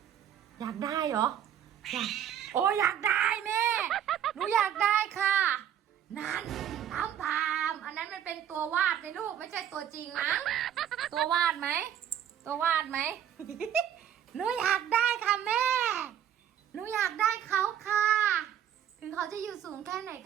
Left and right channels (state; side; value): quieter; left; 9.9 dB